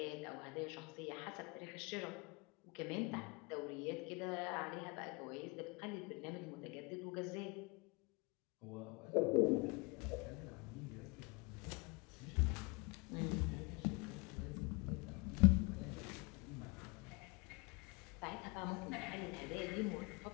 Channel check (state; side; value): quieter; right; 28.6 dB